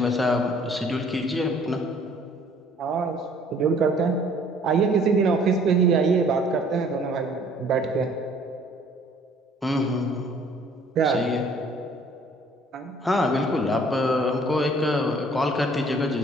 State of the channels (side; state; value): both; normal; correlation 0.57